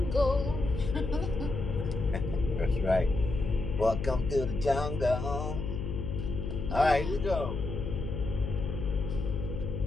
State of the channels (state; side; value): noise; left; hum, 4 dB below the sound